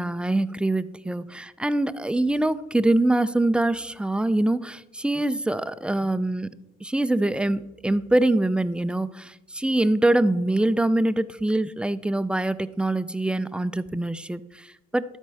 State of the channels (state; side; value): normal; both; correlation 0.95